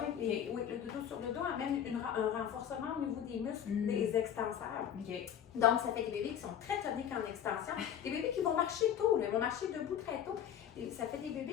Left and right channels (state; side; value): quieter; right; 9.4 dB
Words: Et, oui, le dodo sur le dos amène un renforcement au niveau des muscles des extenseurs. Donc, ça fait des bébés qui sont très toniques en extension. Des bébés qui vont marcher tôt, ils vont marcher debout très tôt. Et ça fait des